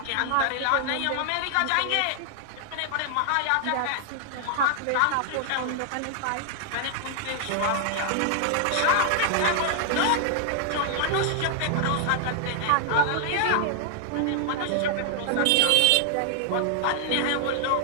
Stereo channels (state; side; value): different; both; correlation 0.00